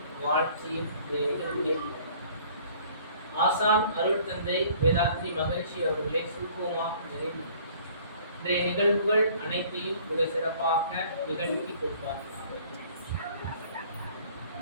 வாழ்த்தியும் ஆசான் அருள் தந்தை வேதாத்ரி மகிழ்ச்சி அவர்களை சுருக்கமாக நிறைவு இன்றைய நிகழ்வுகள் அனைத்தையும் மிக சிறப்பாக நிகழ்த்தி கொடுப்பார்கள்.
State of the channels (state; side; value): inverted; both; correlation -0.54